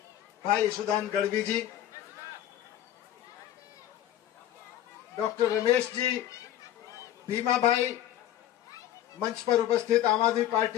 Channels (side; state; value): right; quieter; 12.0 dB